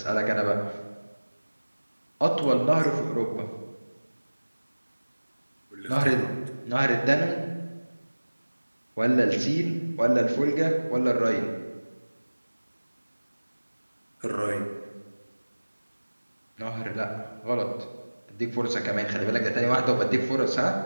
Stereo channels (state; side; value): inverted; both; correlation -1.00